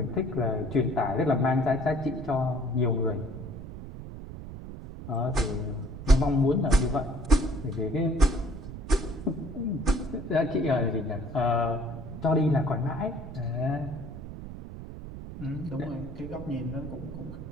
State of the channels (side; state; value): right; noise; rumble, 11 dB below the sound